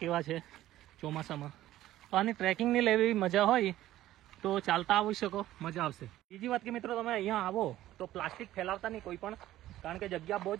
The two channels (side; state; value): left; quieter; 14.4 dB